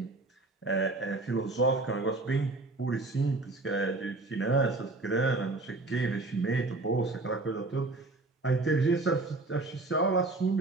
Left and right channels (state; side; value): quieter; left; 3.2 dB